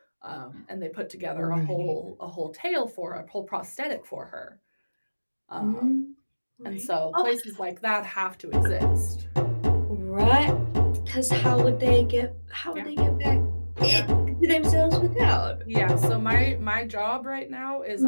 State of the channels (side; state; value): both; inverted; correlation -1.00